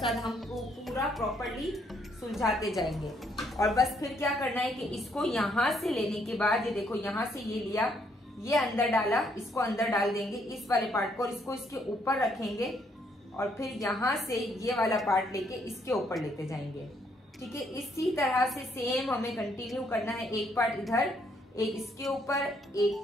साथ हम पूरा प्रॉपर्ली सुलझाते जाएंगे। और बस फिर क्या करना है कि इसको यहाँ से लेने के बाद, ये देखो यहाँ से ये लिया, ये अंदर डाला, इसको अंदर डाल देंगे इस वाले पार्ट को और इसको इसके ऊपर रखेंगे और फिर यहाँ से ये वाला पार्ट लेके इसके ऊपर लेते जाएंगे। ठीक है, इसी तरह से सेम हमें कंटिन्यू करना है। एक पार्ट इधर, एक इसके ऊपर,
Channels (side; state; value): both; normal; correlation 0.70